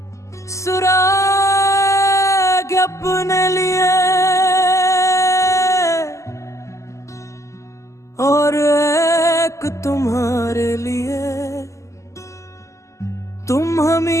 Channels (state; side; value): late; right; 0.15 ms